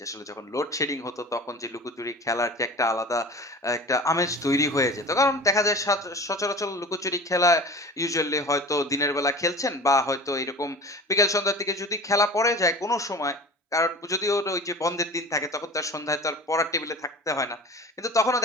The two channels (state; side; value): normal; both; correlation 0.36